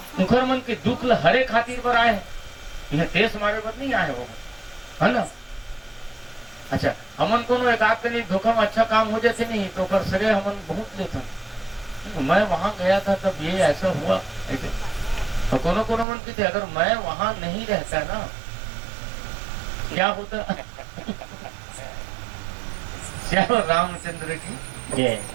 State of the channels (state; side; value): drops out; left; at 16.1 s